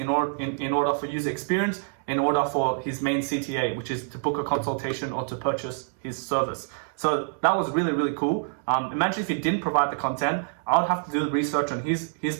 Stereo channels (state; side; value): silent; left; digital silence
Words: order for user experience, in order for his main CTA, which is to book a consultation or to purchase his service. So that was really, really cool. Imagine if he didn't provide the content, I would have to do the research on his